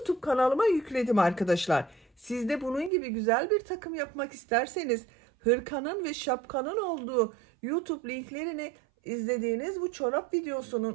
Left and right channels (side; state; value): left; drops out; at 2.9 s